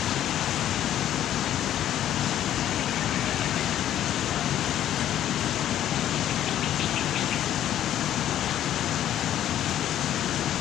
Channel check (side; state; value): right; quieter; 11.5 dB